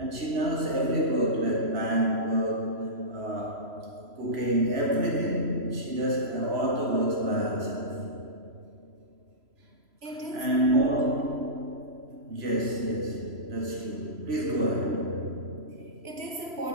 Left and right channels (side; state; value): left; late; 3.0 ms